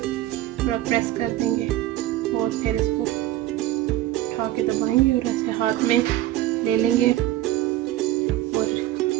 थोड़ा प्रेस कर देंगे और फिर इसको उठा के दबाएंगे और ऐसे हाथ में ले लेंगे और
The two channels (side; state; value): left; quieter; 14.9 dB